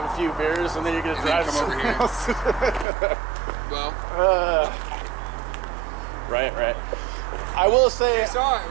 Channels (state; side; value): drops out; left; at 2.9 s